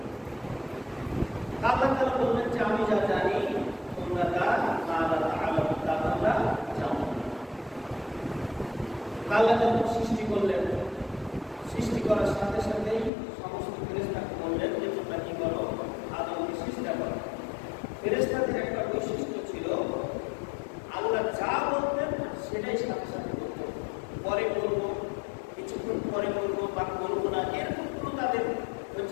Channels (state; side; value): drops out; right; at 13.1 s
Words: আল্লাহ তাআলা বললেন যে আমি যা জানি তোমরা তা তোমরা জানো। আল্লাহ যখন সৃষ্টি করলেন, সৃষ্টি করার সাথে সাথেই সমস্ত ফেরেশতাকে বললেন যে তোমরা কি করো, আদমকে সৃষ্টি করো। ফেরেশতাদের একটা বৈশিষ্ট্য ছিল, আল্লাহ যা বলতেন সেটাই সাথে সাথে করতো। পরে করবো, কিছুক্ষণ পরে করবো বা করবো না, এরকম কোনো তাদের